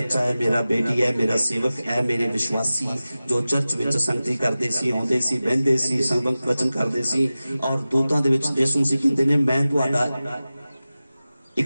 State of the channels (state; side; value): inverted; both; correlation -0.96